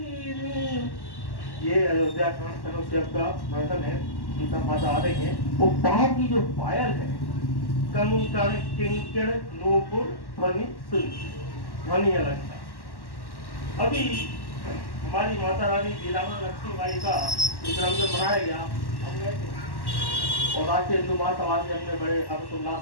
ये अयोध्या कांड तनुष्यक का वर्णन है, सीता माता आ रही है। वो बाहर की जो पायल है, कंकड़ किंकड़ नूपुर ध्वनि ध्वनि अलंकार। अभी हमारी माता रानी वीरांगना लक्ष्मीबाई का जन्मदिन मनाया गया, हम गए थे और राष्ट्रीय हिंदू महासभा से हमने बड़े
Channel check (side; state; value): right; late; 1.1 ms